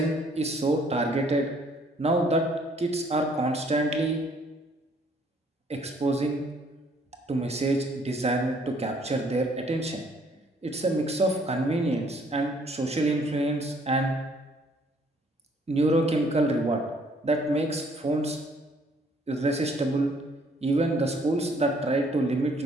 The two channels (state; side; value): normal; both; correlation 0.63